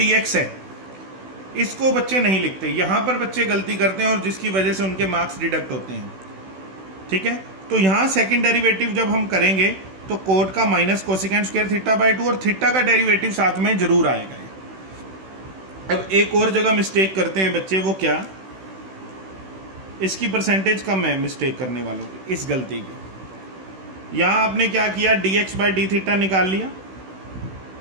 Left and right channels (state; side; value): late; left; 16 ms